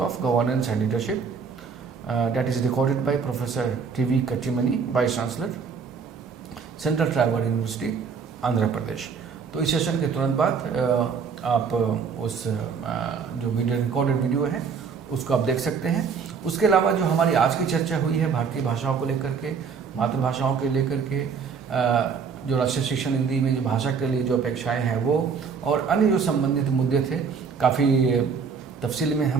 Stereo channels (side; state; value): left; quieter; 5.9 dB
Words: governance and leadership, that is recorded by Professor TV Kattimani, Vice Chancellor, Central Tribal University, Andhra Pradesh. तो इस session के तुरंत बाद आप उस जो video recorded video है उसको आप देख सकते हैं। उसके अलावा जो हमारी आज की चर्चा हुई है भारतीय भाषाओं को लेकर के, मातृभाषाओं के लेकर के, जो राष्ट्रीय शिक्षा नीति में जो भाषा के लिए जो अपेक्षाएं हैं वो, और अन्य जो संबंधित मुद्दे थे, काफ़ी तफसील में